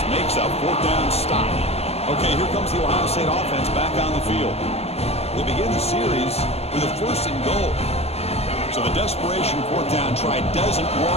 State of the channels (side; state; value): right; late; 0.30 ms